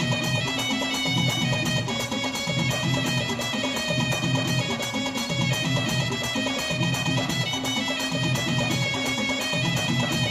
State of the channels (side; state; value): both; identical; correlation 1.00